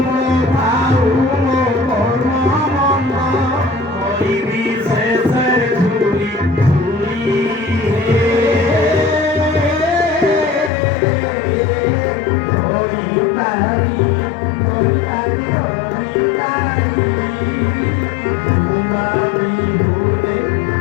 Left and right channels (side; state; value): right; drops out; at 10.7 s